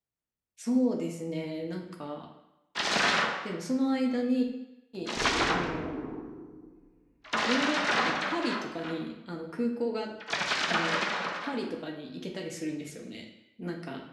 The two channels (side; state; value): both; identical; correlation 1.00